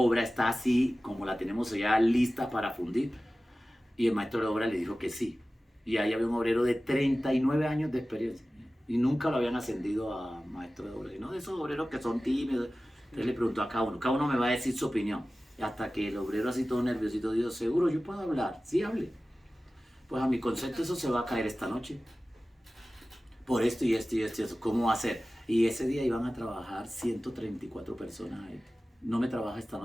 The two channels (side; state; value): both; normal; correlation 0.96